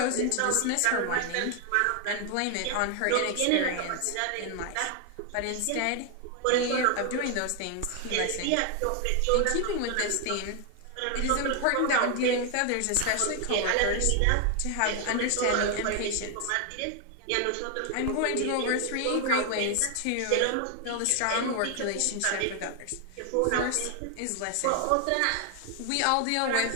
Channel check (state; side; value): different; both; correlation 0.00